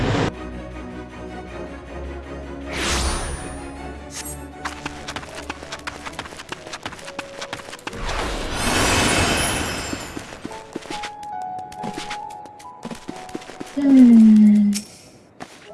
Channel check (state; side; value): identical; both; correlation 1.00